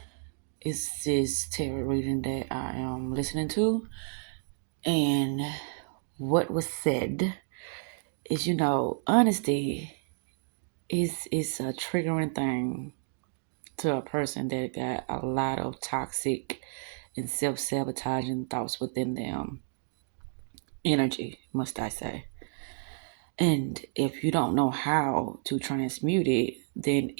It's this tarot reading that I am listening to. And what was said is, honesty is a triggering thing to a person that got a lot of toxic and self-sabotaging thoughts within them. Energy, must I say. And if you don't know how to transmute it, then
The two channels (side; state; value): left; silent; digital silence